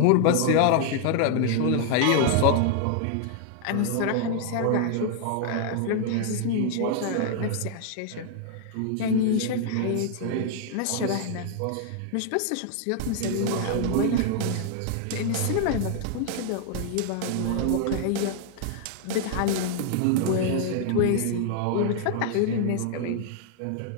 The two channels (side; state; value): both; different; correlation 0.00